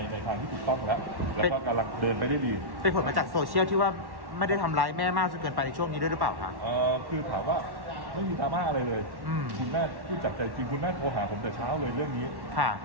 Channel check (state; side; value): late; left; 1.1 ms